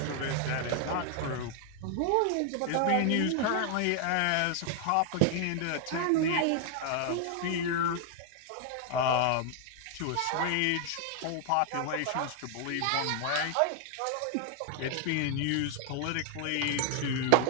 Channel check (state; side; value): different; both; correlation 0.00